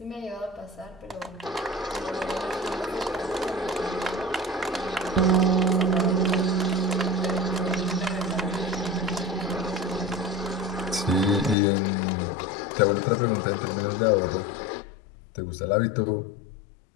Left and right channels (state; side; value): drops out; right; at 11.6 s